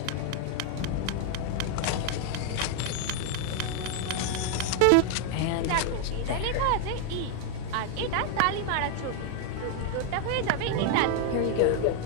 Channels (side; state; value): both; different; correlation 0.00